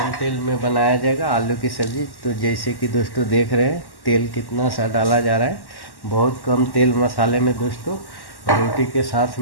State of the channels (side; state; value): right; late; 1.1 ms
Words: तेल में बनाया जाएगा आलू की सब्ज़ी। तो जैसे कि दोस्तों देख रहे हैं तेल कितना सा डाला जा रहा है, बहुत कम तेल मसाले में दोस्तों रोटी के साथ